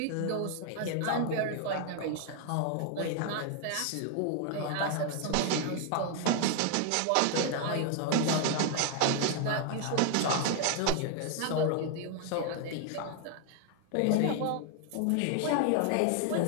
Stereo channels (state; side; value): different; both; correlation 0.00